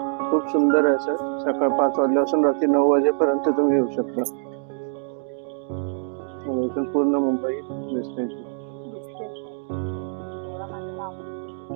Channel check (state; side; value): silent; left; digital silence